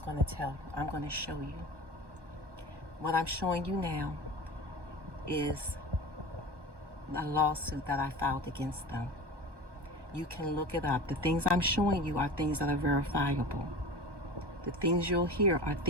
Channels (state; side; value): late; left; 1.2 ms